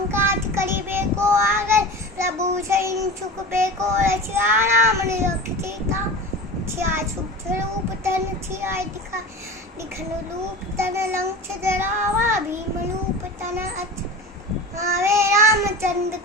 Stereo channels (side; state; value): both; normal; correlation 0.31